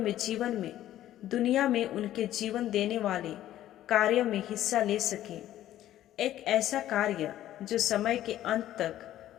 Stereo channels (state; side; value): quieter; right; 13.0 dB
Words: जीवन में दुनिया में उनके जीवन देने वाले कार्य में हिस्सा ले सकें। एक ऐसा कार्य जो समय के अंत